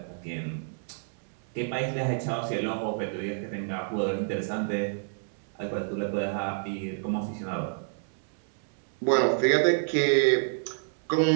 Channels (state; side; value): silent; left; 59 dB below the other